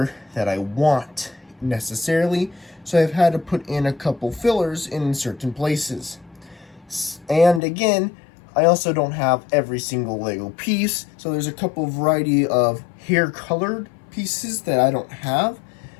that I want necessarily, so I've had to put in a couple fillers in certain places. And again, I also don't have every single Lego piece, so there's a couple variety of hair-colored pieces that I don't have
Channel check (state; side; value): drops out; right; at 7.6 s